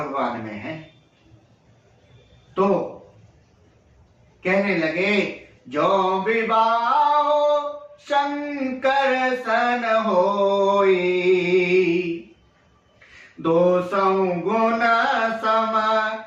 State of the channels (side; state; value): both; identical; correlation 1.00